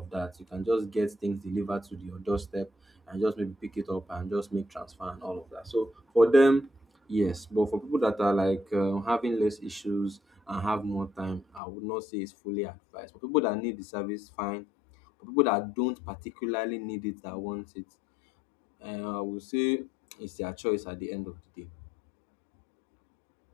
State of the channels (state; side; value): drops out; right; at 11.6 s